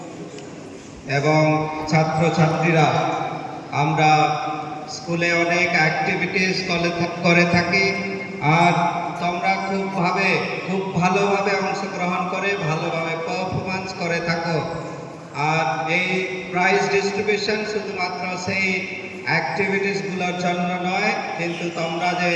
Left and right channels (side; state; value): both; identical; correlation 1.00